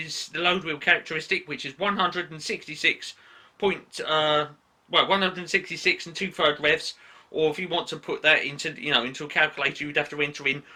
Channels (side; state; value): both; identical; correlation 1.00